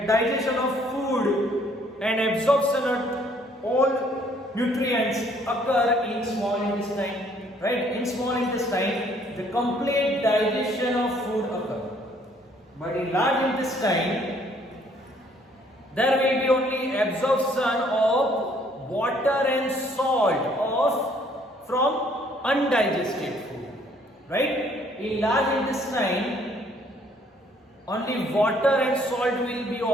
digestion of food and absorption of all nutrients occur in small intestine, right? In small intestine the complete digestion of food occurs. But in large intestine there will be only absorption of water and salt from undigested food, right? In large intestine only water and salt will be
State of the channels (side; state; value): both; normal; correlation 0.63